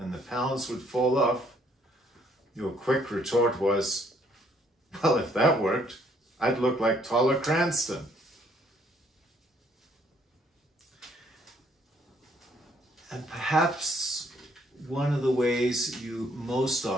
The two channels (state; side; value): normal; both; correlation 0.65